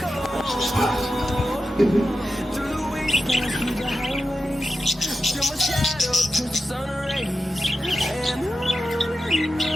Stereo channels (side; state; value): both; normal; correlation 0.90